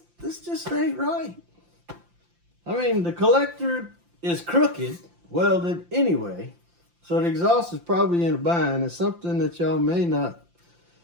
ain't right. I mean, the collector is crooked, welded anyway, so the exhaust is probably in a bind. It's something that y'all may not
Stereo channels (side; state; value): left; late; 5.8 ms